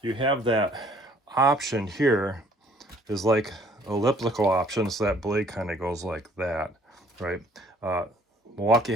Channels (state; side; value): normal; both; correlation 0.58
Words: you have that option here is like elliptical option, so that blade kind of goes like that, right? Milwaukee